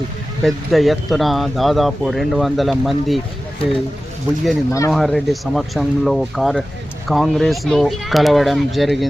పెద్ద ఎత్తున దాదాపు 200 మంది బుయ్యని మనోహర్ రెడ్డి సమక్షంలో కాంగ్రెస్లో కలవడం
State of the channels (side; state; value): both; normal; correlation 0.95